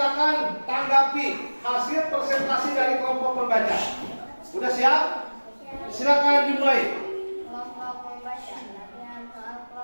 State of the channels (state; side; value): inverted; both; correlation -1.00